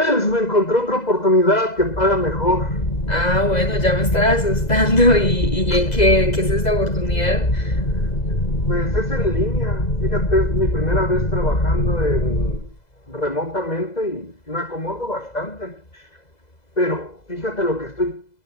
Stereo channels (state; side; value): late; right; 2.0 ms